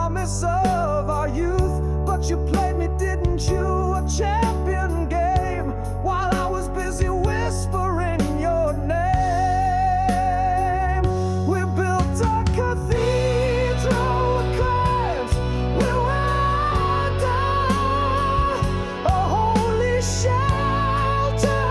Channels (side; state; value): both; identical; correlation 1.00